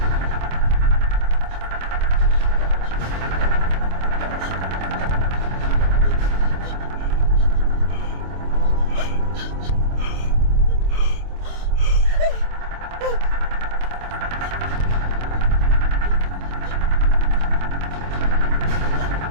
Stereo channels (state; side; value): late; left; 25 ms